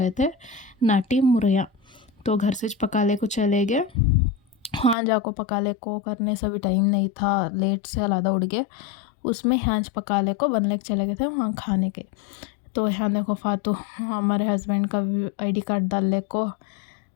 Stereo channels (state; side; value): drops out; right; at 5.0 s